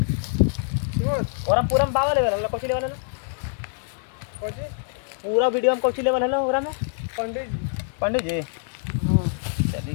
और हम पूरा में बाबा लेवल हल्ला कोची लेवल हल्ला कोची पूरा वीडियो में कोची लेवल हल्ला पूरा में पंडित जी हाँ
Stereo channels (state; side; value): silent; right; digital silence